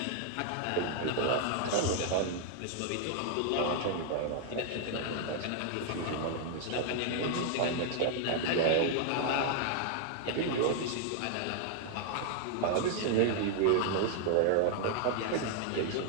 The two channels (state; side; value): different; both; correlation 0.00